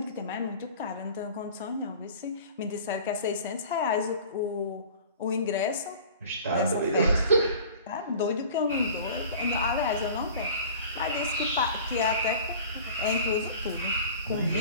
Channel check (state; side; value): inverted; both; correlation -0.43